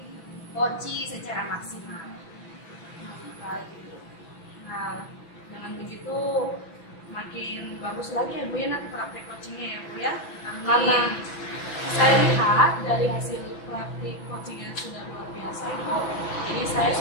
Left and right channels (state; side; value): late; right; 6.0 ms